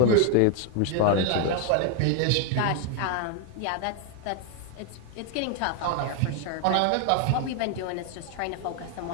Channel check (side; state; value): both; different; correlation 0.01